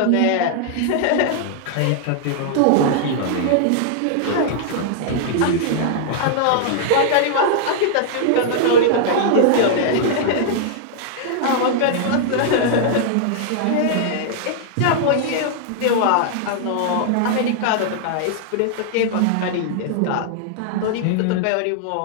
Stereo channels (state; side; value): different; both; correlation -0.01